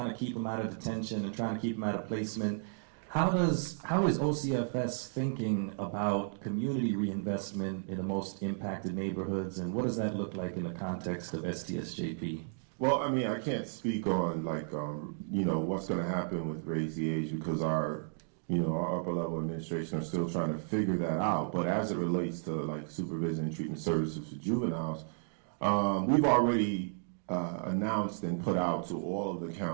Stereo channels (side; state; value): left; silent; digital silence